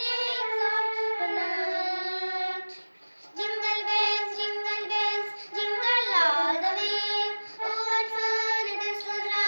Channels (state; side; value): inverted; both; correlation -1.00